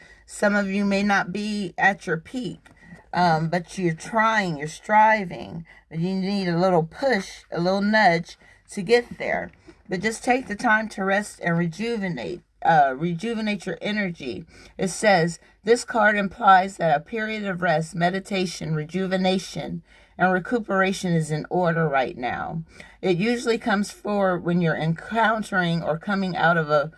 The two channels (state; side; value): identical; both; correlation 1.00